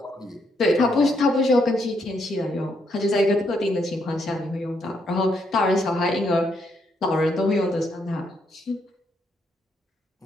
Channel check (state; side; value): normal; both; correlation 0.76